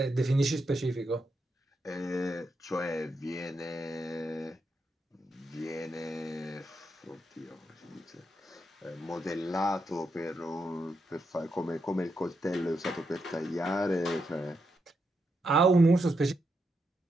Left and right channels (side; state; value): both; normal; correlation 0.82